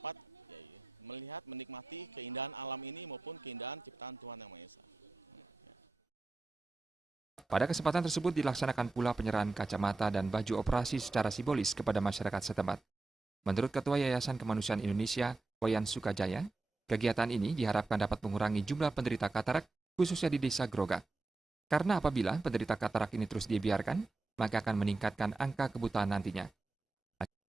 melihat, menikmati keindahan alam ini maupun keindahan ciptaan Tuhan Yang Maha Esa. Pada kesempatan tersebut dilaksanakan pula penyerahan kacamata dan baju operasi secara simbolis kepada masyarakat setempat. Menurut Ketua Yayasan Kemanusiaan Indonesia, Wayan Sukajaya, kegiatan ini diharapkan dapat mengurangi jumlah penderita katarak, khususnya di Desa Grogak. Karena apabila penderita katarak ini terus dibiarkan, maka akan meningkatkan angka kebutaan nantinya.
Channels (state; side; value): quieter; left; 3.4 dB